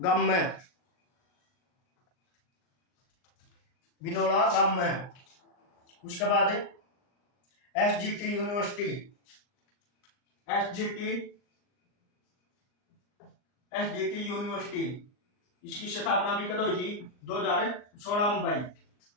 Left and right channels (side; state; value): right; late; 39 ms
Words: में, बिनोला गांव में। उसके बाद SGT यूनिवर्सिटी, SGT यूनिवर्सिटी, इसकी स्थापना भी कब हुई थी, 2016 में भाई,